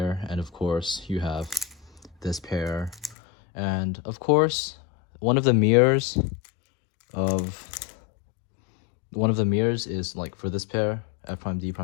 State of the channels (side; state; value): right; drops out; at 3.2 s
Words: and of course you have this pair, and of course one of the mirrors is like for this pair, F prime D